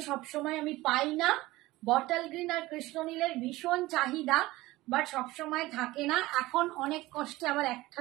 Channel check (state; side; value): quieter; left; 18.7 dB